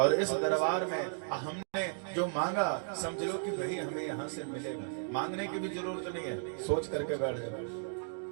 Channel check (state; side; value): silent; left; digital silence